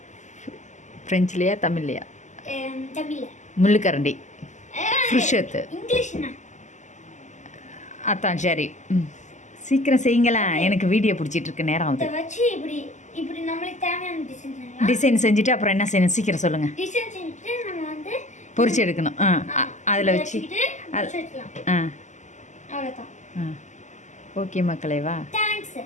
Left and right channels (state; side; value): late; right; 0.34 ms